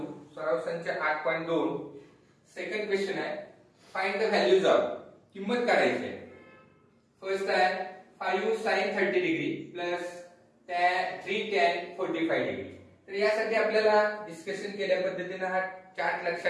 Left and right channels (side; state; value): both; identical; correlation 1.00